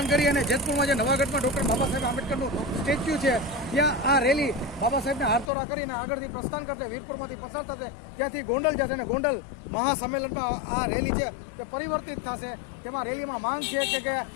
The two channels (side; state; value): right; drops out; at 5.5 s